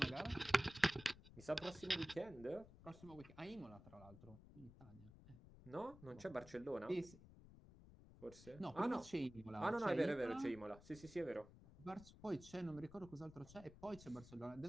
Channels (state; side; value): noise; left; rumble, 18 dB below the sound